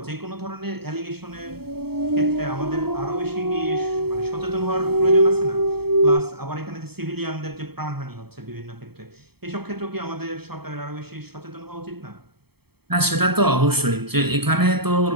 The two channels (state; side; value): late; left; 0.96 ms